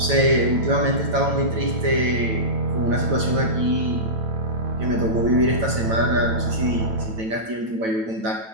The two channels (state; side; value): late; left; 9.0 ms